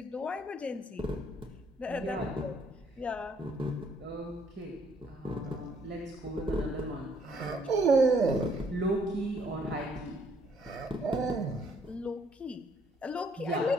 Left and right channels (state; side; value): normal; both; correlation 0.66